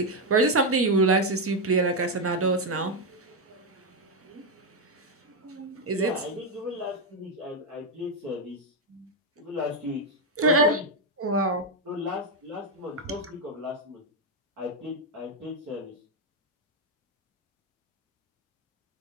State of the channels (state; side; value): normal; both; correlation 0.04